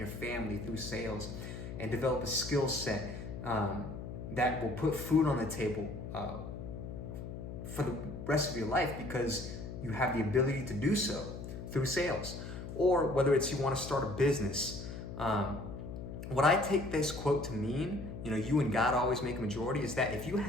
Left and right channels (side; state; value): left; noise; hum, 8 dB below the sound